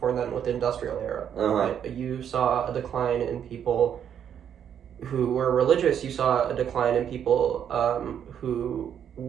then with the industrial era. Right? You saw a decline in people who were religious. You saw a decline in people who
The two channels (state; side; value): quieter; left; 8.8 dB